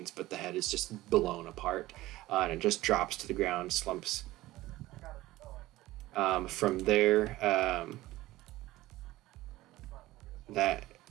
but the head is just blown apart, and it just drops to the ground, slumps. From there,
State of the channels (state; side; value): quieter; left; 17.2 dB